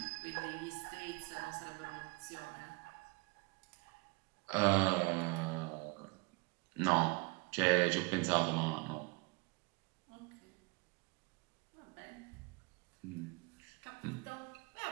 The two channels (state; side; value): quieter; left; 27.9 dB